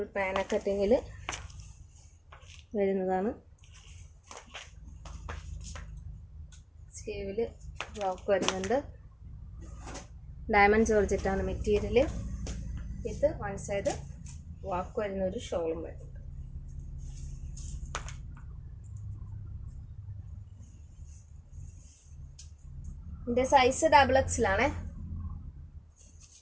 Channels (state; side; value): identical; both; correlation 1.00